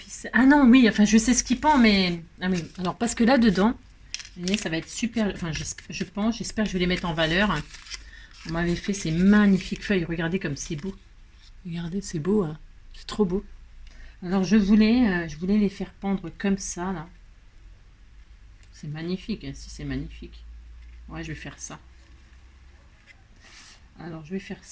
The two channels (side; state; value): both; identical; correlation 1.00